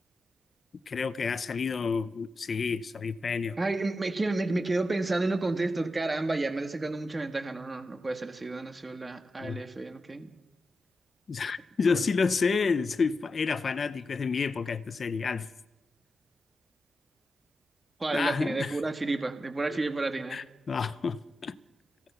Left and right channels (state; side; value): normal; both; correlation 0.89